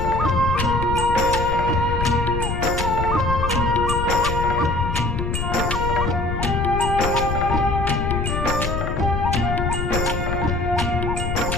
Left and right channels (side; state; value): left; noise; rumble, 2 dB below the sound